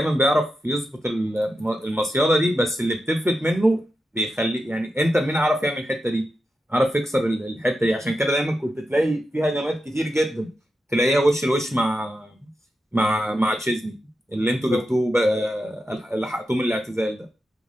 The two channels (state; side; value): normal; both; correlation 0.89